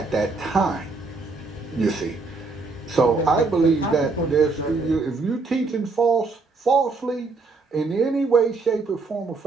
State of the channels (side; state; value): left; quieter; 3.9 dB